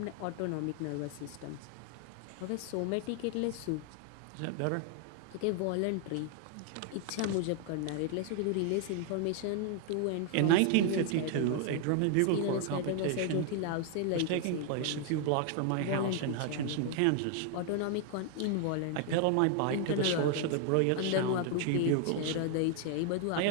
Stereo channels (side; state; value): both; different; correlation 0.00